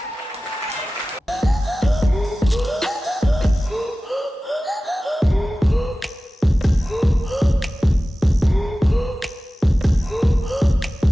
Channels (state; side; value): normal; both; correlation 0.96